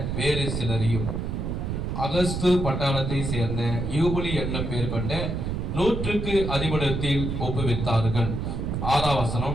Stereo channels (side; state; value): right; noise; rumble, 2 dB below the sound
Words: வேறு சிலரையும் அகஸ்து பட்டாளத்தை சேர்ந்த யூபுலி என்னும் பேர் கொண்ட 100 அதிபடத்தில் ஒப்புவித்தார்கள். 6ஆம்